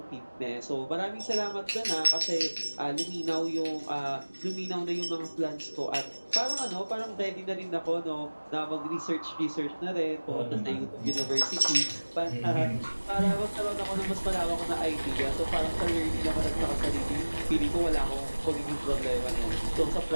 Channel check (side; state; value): both; inverted; correlation -1.00